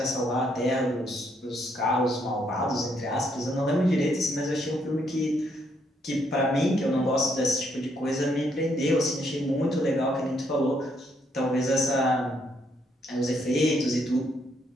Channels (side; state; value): both; normal; correlation 0.73